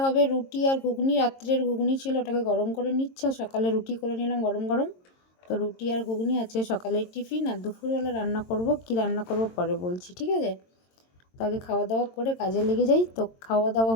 হবে রুটি আর ঘুগনি। রাত্রের ঘুগনি ছিল, ওটাকে গরম করে নিচ্ছে, আর সকালে রুটি করে নিলাম গরম গরম। তো রুটি আর ঘুগনি আছে সকালের টিফিন। আর দুপুরবেলা রান্না করব, কি রান্না করব পরে বলছি, ঠিক আছে? তো আগে খাওয়া দাওয়া করে কাজে লেগে যাই। তো খাওয়া দাওয়া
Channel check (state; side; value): late; right; 22 ms